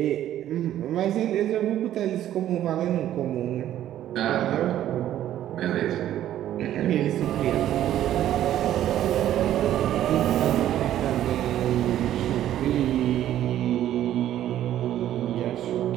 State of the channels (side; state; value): left; quieter; 12.1 dB